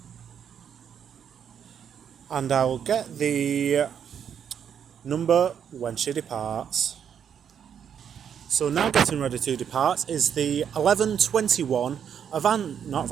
And I will get the number when she departs. So now getting ready to depart is the 11:21 not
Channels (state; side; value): quieter; left; 8.2 dB